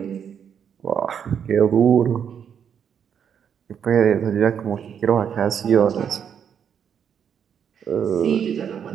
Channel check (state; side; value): quieter; left; 8.0 dB